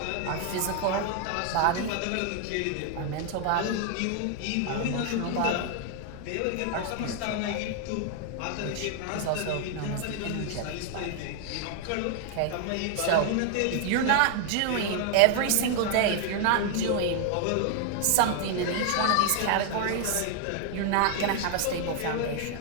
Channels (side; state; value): both; different; correlation 0.00